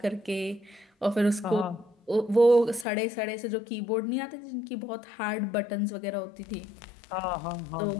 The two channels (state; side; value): drops out; right; at 2.9 s